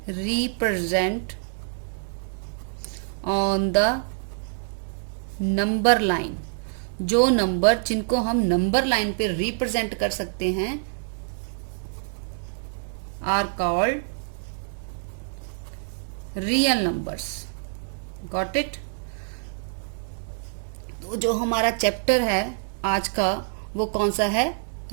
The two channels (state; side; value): silent; left; 61 dB below the other